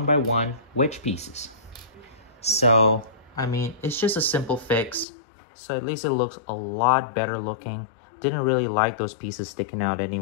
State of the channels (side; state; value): right; drops out; at 5.1 s